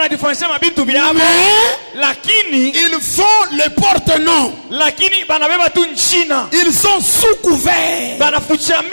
diferencia mabintu biabo, mais lakini ils font le porte-nom. lakini banabeba tu nchina, Ils sont sous couvert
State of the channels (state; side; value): inverted; both; correlation -1.00